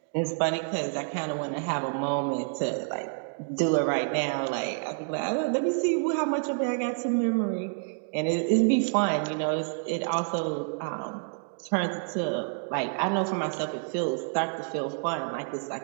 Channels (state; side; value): silent; left; 59 dB below the other